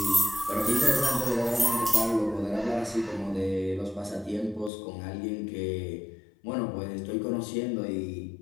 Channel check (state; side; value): drops out; right; at 4.7 s